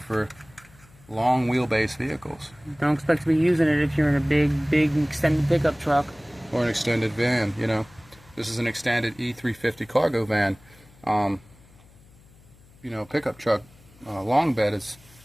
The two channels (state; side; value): noise; left; hum, 26 dB below the sound